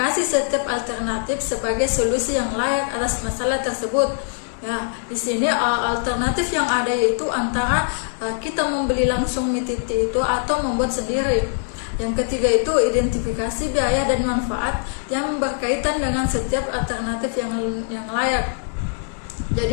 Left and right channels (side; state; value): right; silent; digital silence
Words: setiap alternatif sebagai solusi yang layak atas masalah tersebut. Ya, di sini alternatif yang ada yaitu antara kita membeli langsung mie titik itu atau membuat sendiri. Yang ketiga itu identifikasi biaya dan manfaat yang berkaitan dengan setiap alternatif yang layak.